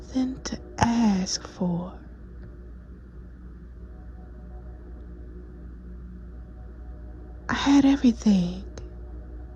to ask for. I had everything.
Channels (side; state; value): both; identical; correlation 1.00